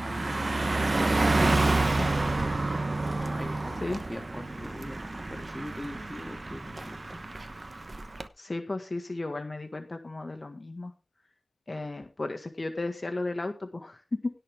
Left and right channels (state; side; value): normal; both; correlation 0.97